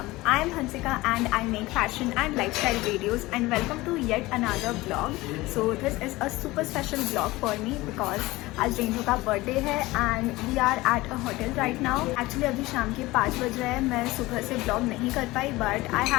I am Hansika and I make fashion and lifestyle videos and welcome to yet another vlog. So this is a super special vlog for me because आज रेंजो का बर्थडे है and we are at a hotel right now. Actually अभी शाम के 5 बज रहे हैं, मैं सुबह से vlog नहीं कर पाई but I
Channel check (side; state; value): right; quieter; 19.7 dB